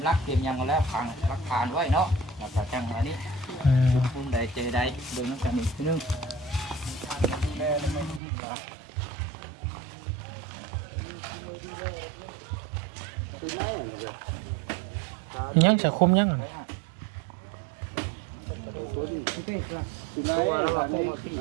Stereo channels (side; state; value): left; drops out; at 8.2 s